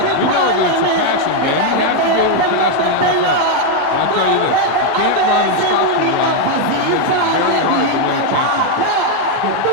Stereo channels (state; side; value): different; both; correlation 0.01